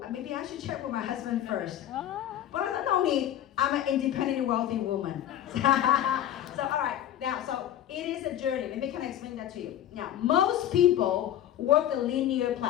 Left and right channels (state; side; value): quieter; right; 11.7 dB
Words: maybe I should check with my husband first. But I said, no need. I'm an independent, wealthy woman. So, all right. Now, so it is a journey. Let me kind of explain that to you. Now, most people work the linear